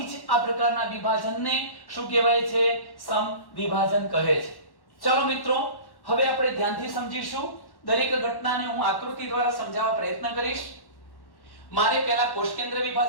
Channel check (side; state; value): right; late; 1.1 ms